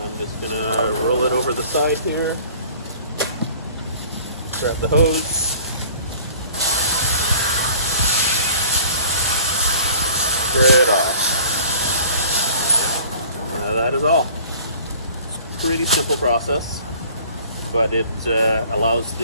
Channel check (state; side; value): inverted; both; correlation -0.48